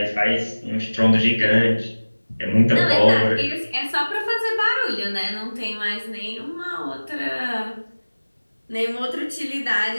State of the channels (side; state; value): both; inverted; correlation -1.00